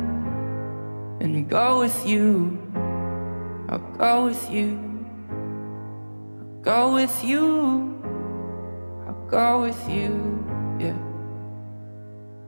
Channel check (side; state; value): both; inverted; correlation -1.00